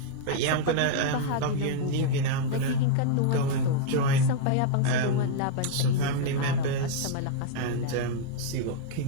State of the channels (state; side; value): different; both; correlation -0.01